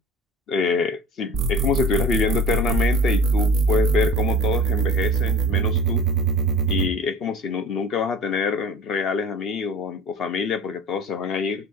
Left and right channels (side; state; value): both; normal; correlation 0.41